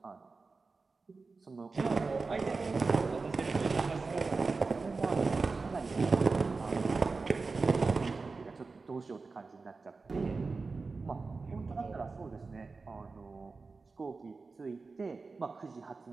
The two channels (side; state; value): left; quieter; 4.1 dB